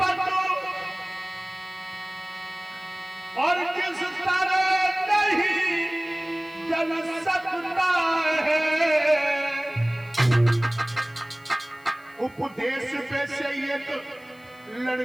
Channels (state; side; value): noise; left; hiss, 29 dB below the sound